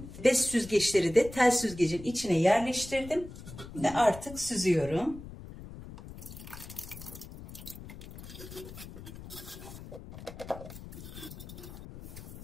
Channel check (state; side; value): noise; left; rumble, 13 dB below the sound